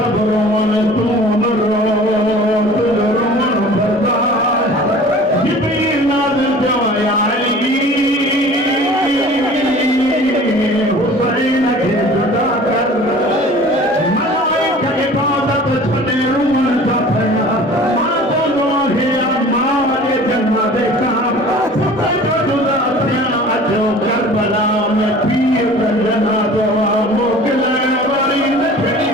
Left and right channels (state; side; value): normal; both; correlation 0.44